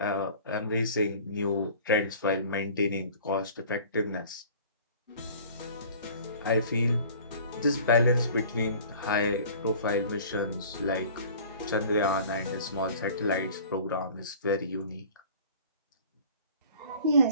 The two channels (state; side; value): inverted; both; correlation -0.46